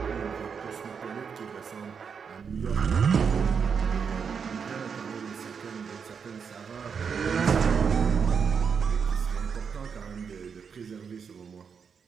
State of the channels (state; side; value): quieter; left; 6.4 dB